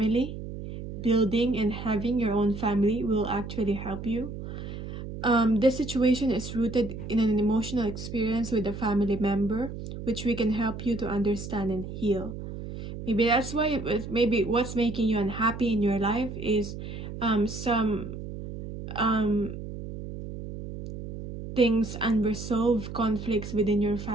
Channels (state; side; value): noise; right; hum, 9 dB below the sound